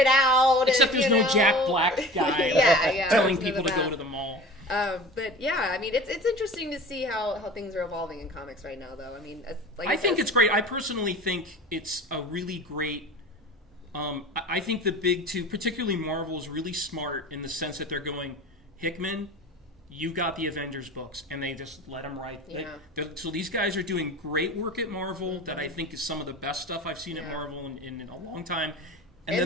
out. Except there's no Jack Black guy telling people to go to the mall. But yeah, I mean, it's interesting to see how things are evolving in comics right now, though. I mean, I think it's great. I personally think it's a really great. I think the big two, particularly Marvel, is really smart in the sense that they're going, Hickman, you got the Avengers books, and they just let them write. Yeah. So these guys are doing great work at Marvel that I think is some of the best stuff I've seen at Marvel in a long time. And then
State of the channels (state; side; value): normal; both; correlation 0.38